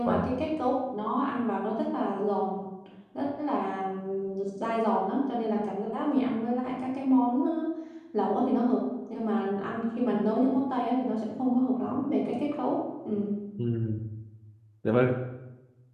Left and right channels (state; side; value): identical; both; correlation 1.00